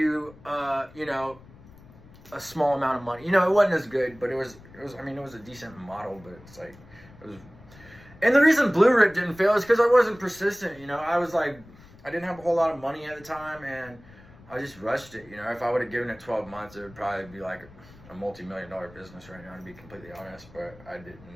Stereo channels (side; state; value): left; noise; rumble, 22 dB below the sound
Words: you know, a small amount of money. You know, it wasn't as good, but it was I mean, it was a decent model, but it's like, it was. And the reason Blue Rip didn't fail is because I wasn't persistent, you know. I was like, I didn't have a whole lot of money at the time, and I just rushed it, you know. If I would have given it 12 months, it would probably be like a multi-million-dollar business right now, to be completely honest, but I didn't.